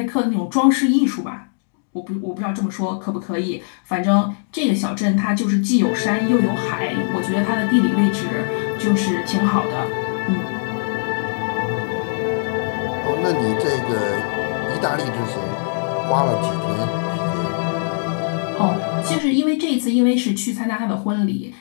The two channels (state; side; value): silent; right; digital silence